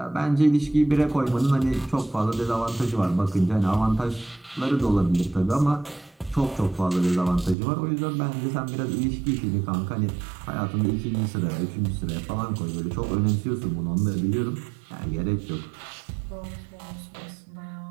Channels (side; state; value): left; drops out; at 7.6 s